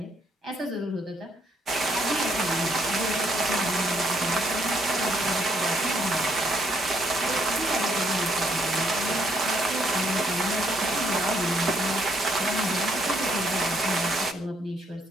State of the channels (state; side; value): normal; both; correlation 0.71